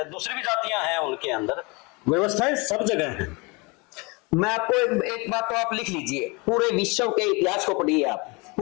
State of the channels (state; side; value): quieter; right; 28.2 dB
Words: दूसरी भी जातियां हैं उनके अंदर, व्यवस्थाएं सब जगह हैं। मैं आपको एक बात तो आप लिख लीजिए, पूरे विश्व के इतिहास को पढ़िए आप,